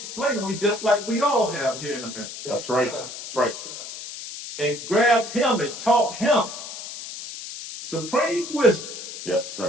just like we all have here in America, That's right. That's right. and grabbed him and taught him supreme wisdom. Yes,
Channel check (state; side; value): noise; left; hiss, 10 dB below the sound